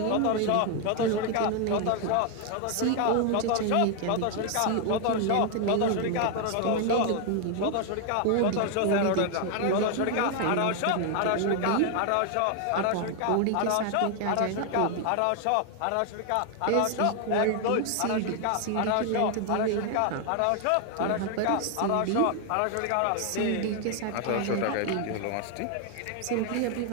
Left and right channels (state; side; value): different; both; correlation 0.00